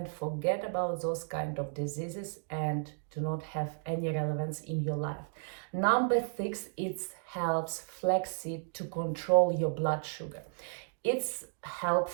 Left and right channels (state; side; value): silent; left; digital silence